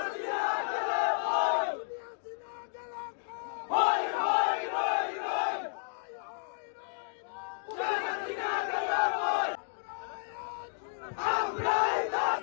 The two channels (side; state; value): right; silent; digital silence